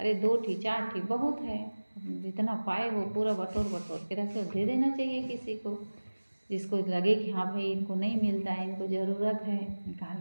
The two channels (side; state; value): both; inverted; correlation -1.00